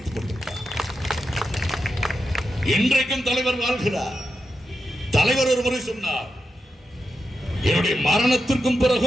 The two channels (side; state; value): both; normal; correlation 0.88